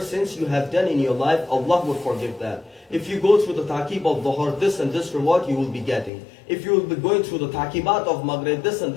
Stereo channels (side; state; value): right; drops out; at 6.1 s